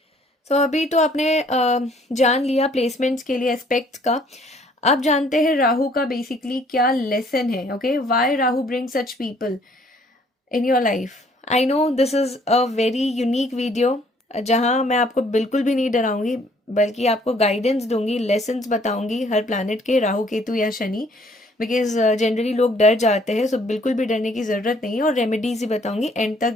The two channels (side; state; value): both; normal; correlation 0.61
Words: सो अभी तो आपने जान लिया प्लेसमेंट्स के लिए एस्पेक्ट्स का. अब जानते हैं राहु का बेसिकली क्या लेसन है. Okay, why Rahu bring such people in your life. I know this is a very unique video जहाँ मैं आपको बिल्कुल भी नहीं डराऊंगी, बल्कि आपको गाइडेंस दूंगी, लेसन्स बताऊंगी हर प्लैनेट के, राहु केतु या शनि, बिकॉज जनरली लोग डर जाते हैं. सो बिल्कुल भी डरने की ज़रूरत नहीं है, और रेमेडीज ही बताऊंगी. एंड तक